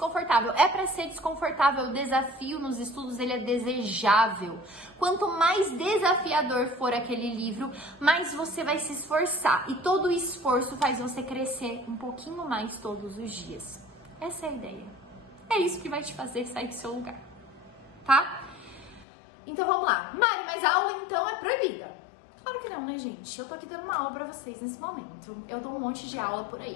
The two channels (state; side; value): drops out; right; at 19.1 s